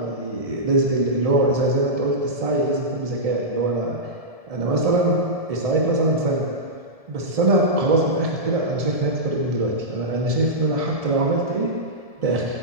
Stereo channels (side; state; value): left; late; 1.7 ms